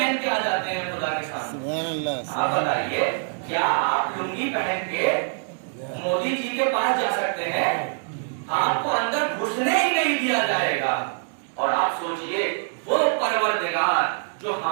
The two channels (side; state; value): left; silent; 61 dB below the other